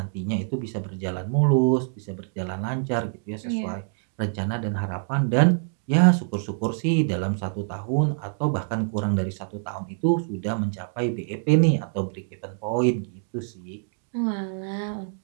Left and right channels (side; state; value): left; silent; digital silence